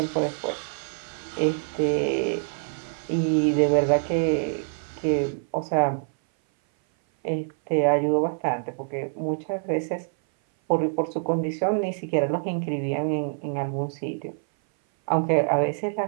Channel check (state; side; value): silent; left; 58 dB below the other